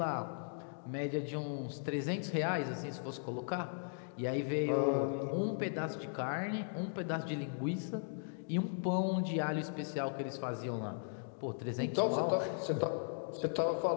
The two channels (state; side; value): silent; right; digital silence